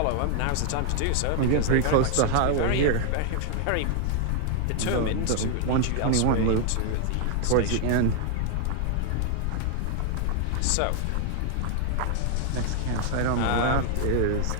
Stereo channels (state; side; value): different; both; correlation 0.00